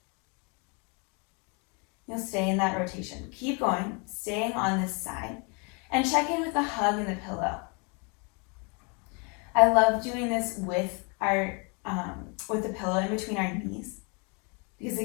You'll stay in that rotation. Keep going, staying on this side. And check in with the hug and the pillow. I love doing this with the pillow in between our knees, because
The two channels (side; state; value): right; quieter; 33.6 dB